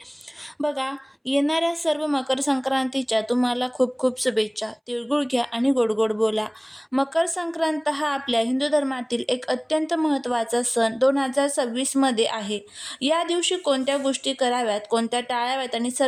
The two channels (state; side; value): identical; both; correlation 1.00